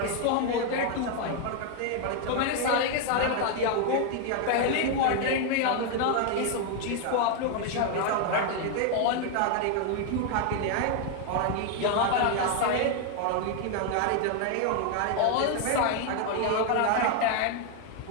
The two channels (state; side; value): different; both; correlation 0.00